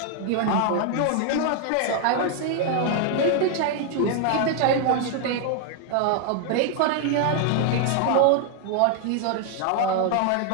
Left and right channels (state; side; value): different; both; correlation 0.00